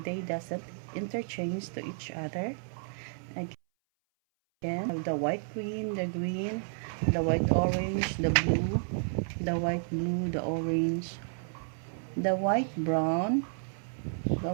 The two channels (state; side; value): silent; left; 57 dB below the other